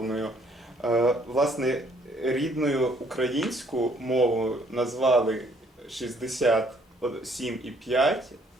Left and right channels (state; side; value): normal; both; correlation 0.64